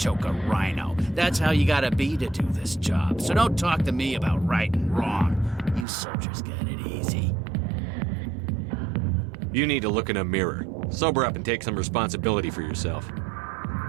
a rhino. That's how you gotta be to do this job. So don't talk to me about right and wrong. You soldiers got it easy. You need to look in a mirror. Sober up and take some responsibility for yourself.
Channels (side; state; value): left; drops out; at 5.9 s